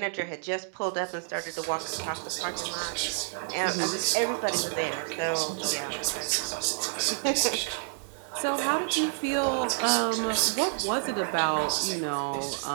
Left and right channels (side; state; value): left; silent; digital silence